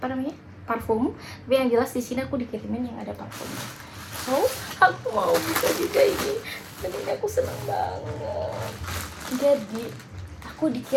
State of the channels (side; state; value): both; identical; correlation 1.00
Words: namanya parfum? Tapi yang jelas di sini aku dikirimin yang ada parfumnya. So aku mau bisa juga ini. Dan ini aku seneng banget. Jadi aku